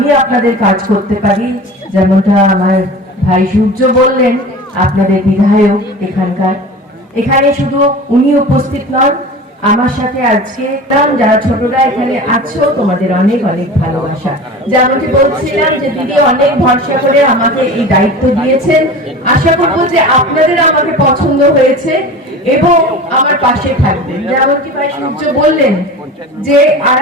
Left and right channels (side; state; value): both; normal; correlation 0.35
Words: আপনাদের কাজ করতে পারি। যেমনটা আমার ভাই সূর্য বললেন, আপনাদের বিধায়ক এখানে শুধু উনি উপস্থিত নন, আমার সাথে আজকে যারা ছোটরা এখানে আছো তোমাদের অনেক অনেক ভালোবাসা। যেমনটি বলছিলাম যে দিদি অনেক ভরসা করে আমাকে এই দায়িত্ব দিয়েছেন। আশা করবো যে আপনাদের আমাকে পছন্দ হয়েছে এবং আমার পাশে থাকবেন। যেমনটি ভাই সূর্য বললেন যে